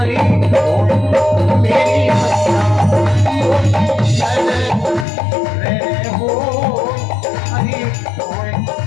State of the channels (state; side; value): drops out; right; at 5.1 s